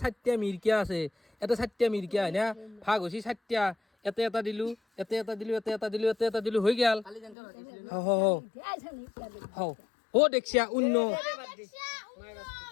4টা মিৰকিয়া আছে এটা 4টা মিৰকিয়া হয় না ভাগ হৈছে 4টা এটা দিলো হৈ গেল দেখছিয়া উন্ন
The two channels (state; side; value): drops out; right; at 7.4 s